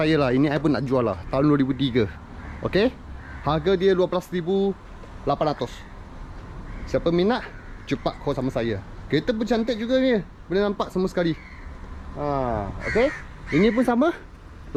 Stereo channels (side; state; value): both; identical; correlation 1.00